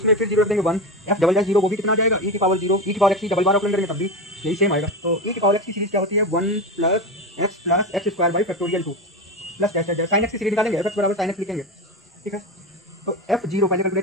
फिर 0 रख देंगे 1, f डबल डैश 0 वो भी कितना आ जाएगा, e की पावर 0, e की पावर x डबल बार ऑपरेंड करेंगे तब भी यही सेम आएगा। तो e की पावर x की सीरीज क्या होती है, 1 plus x square by factorial 2 plus dash dash sign x की सीरीज निकालेंगे, f बराबर साइन x लिखेंगे, ठीक है। तो f0 पहले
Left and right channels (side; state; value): both; normal; correlation 0.20